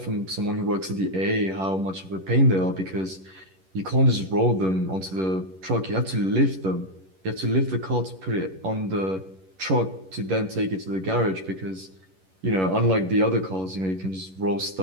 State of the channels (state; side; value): late; left; 11 ms